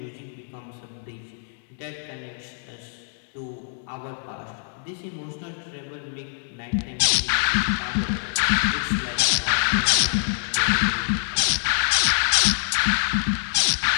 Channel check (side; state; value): right; silent; digital silence